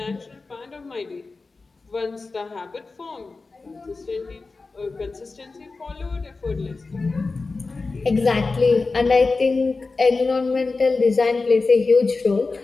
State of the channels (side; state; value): right; quieter; 3.9 dB